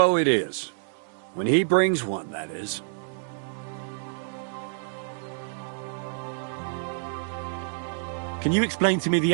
it is. When he brings one, that is. Can you explain to me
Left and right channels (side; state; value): left; silent; digital silence